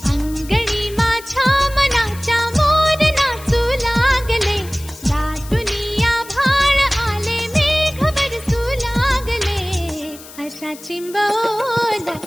अंगणी माझ्या मनाच्या मोर नाचू लागले, दाटुनी आभाळ आले, मेघ बरसू लागले. अशा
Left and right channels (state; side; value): noise; left; hiss, 18 dB below the sound